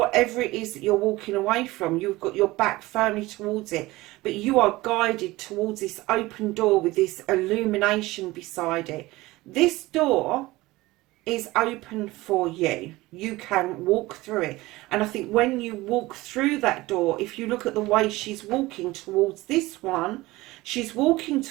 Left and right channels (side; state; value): left; quieter; 19.6 dB